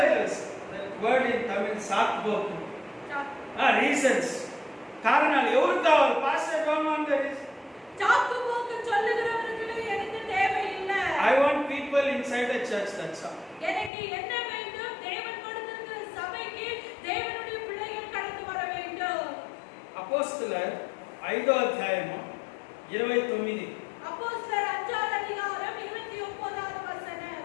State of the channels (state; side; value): drops out; right; at 13.9 s